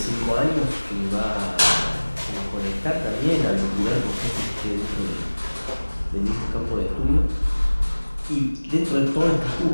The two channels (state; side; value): inverted; both; correlation -1.00